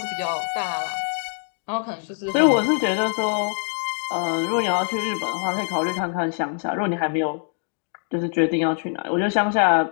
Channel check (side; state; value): right; silent; 63 dB below the other